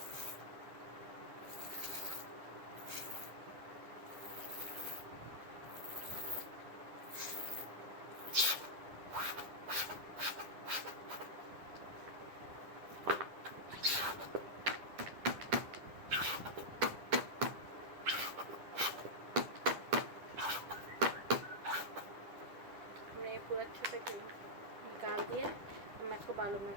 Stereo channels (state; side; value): late; left; 10 ms